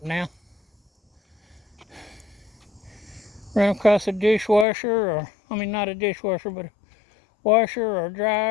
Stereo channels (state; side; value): drops out; right; at 4.7 s